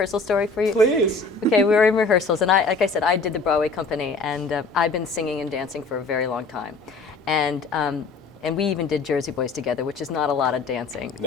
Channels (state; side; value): quieter; right; 3.9 dB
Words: story for you? Please. Okay, we were in rehearsals, and like I said, I did the Broadway company, and I've been singing and dancing for a very long time. And we even did Jersey Boys together, which is not a lot of dancing,